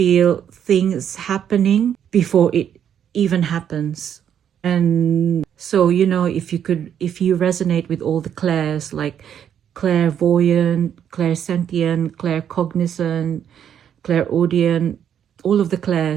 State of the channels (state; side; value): quieter; left; 9.1 dB